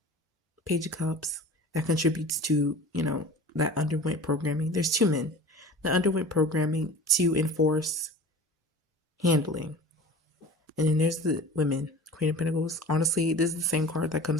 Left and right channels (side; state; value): both; normal; correlation 0.39